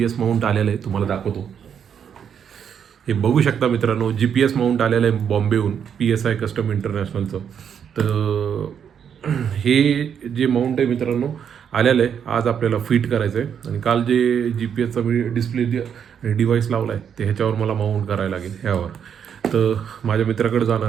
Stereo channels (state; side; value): quieter; left; 8.0 dB